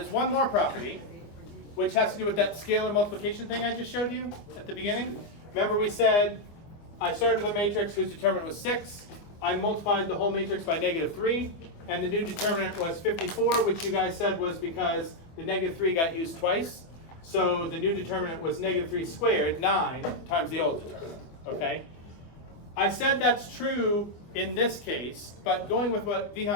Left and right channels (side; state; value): right; late; 24 ms